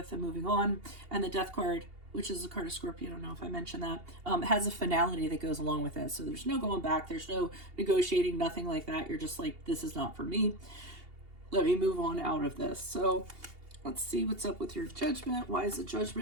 and moving on. And the Death card, which is a card of Scorpio, I don't know if I mentioned that, has a finality that goes along with it. So there's no going back. There's no negotiating, nothing like that. You're just like, this is not for me. Let me move on out of this. So let's see what's up with your Judgment. Why is the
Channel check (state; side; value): late; left; 2.8 ms